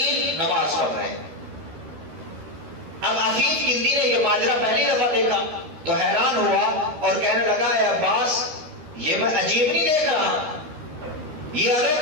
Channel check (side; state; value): left; late; 13 ms